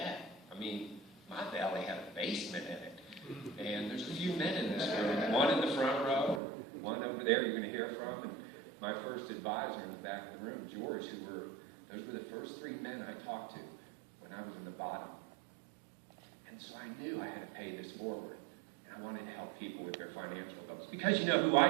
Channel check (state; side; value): drops out; left; at 6.4 s